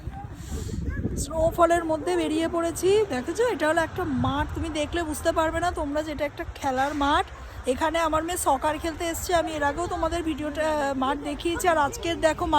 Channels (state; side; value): identical; both; correlation 1.00